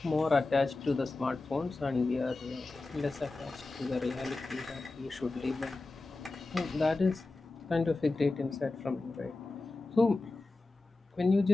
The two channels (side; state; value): right; quieter; 3.4 dB